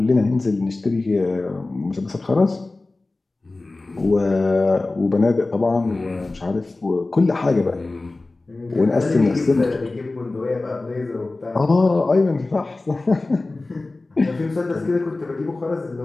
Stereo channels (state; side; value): quieter; right; 3.2 dB